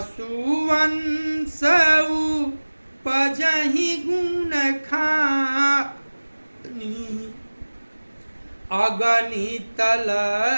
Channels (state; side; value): inverted; both; correlation -1.00